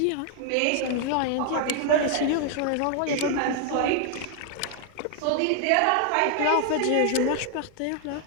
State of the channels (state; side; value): different; both; correlation 0.00